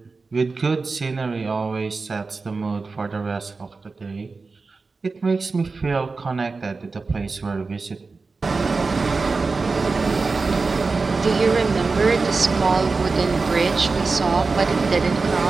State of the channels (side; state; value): left; quieter; 4.1 dB